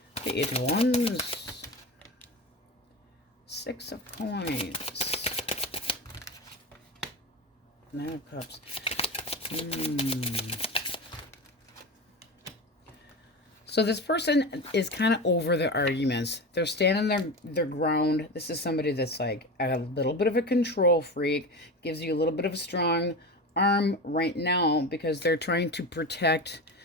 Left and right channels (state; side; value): normal; both; correlation 0.26